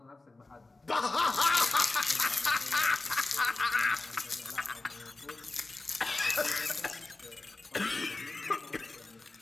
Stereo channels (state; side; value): quieter; right; 3.3 dB